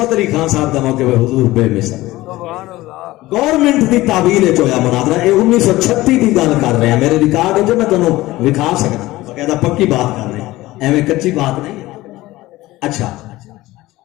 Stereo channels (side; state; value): right; quieter; 18.0 dB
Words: علی خان صاحب دا موقع پہ حضور بے مثل. گورنمنٹ دی تعبیر وچ ہویا مناظرہ. اے 1936 دی گل کر رہے ہیں, میرے ریکارڈ وچ میں تانوں وکھا سکدا, باقاعدہ پکی بات کر رہے ہیں, ایویں کچی بات نہیں. اچھا